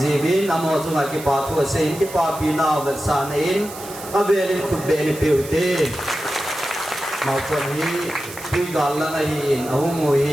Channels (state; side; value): noise; right; hiss, 14 dB below the sound